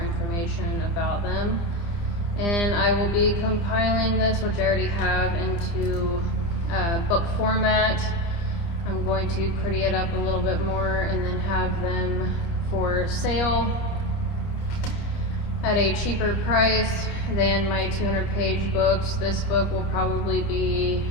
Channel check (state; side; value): late; right; 29 ms